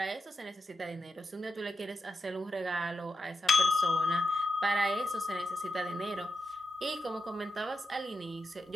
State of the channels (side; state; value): both; normal; correlation 0.87